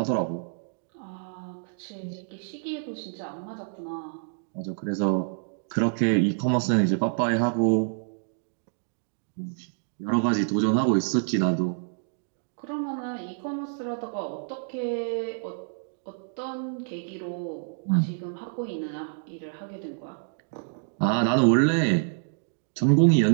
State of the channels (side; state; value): left; silent; digital silence